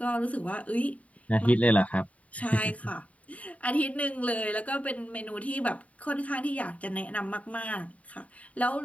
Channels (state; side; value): late; right; 0.068 ms